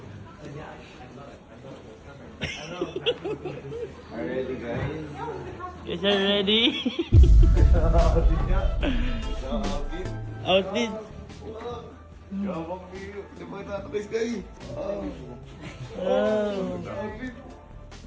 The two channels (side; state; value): both; identical; correlation 1.00